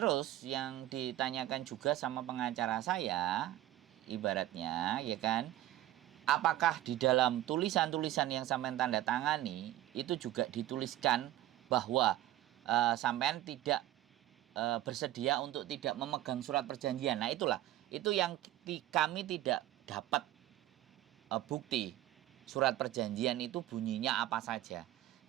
yang ditanyakan juga sama pengacara saya, ibaratnya ya kan, apakah di dalam tulisan-tulisan yang sampean tanda tangani itu juga dituliskan bahwa sampean tidak bersedia untuk tidak memegang surat perjanjian. Nah, itu yang kami tidak dapat bukti surat perjanjian itu bunyinya apa saja.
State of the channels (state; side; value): quieter; left; 14.4 dB